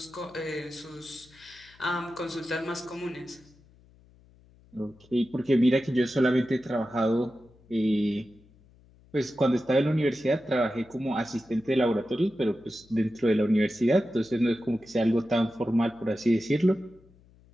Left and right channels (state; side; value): noise; left; hum, 28 dB below the sound